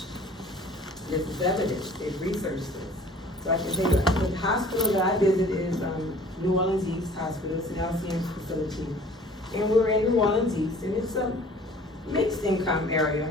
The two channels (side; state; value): both; normal; correlation 0.50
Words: This is evidence, they've researched this. So I can say that the hospital that I visit is New Orleans East Hospital. It's an LCM facility. And we're in New Orleans East, and it's a mixed income area,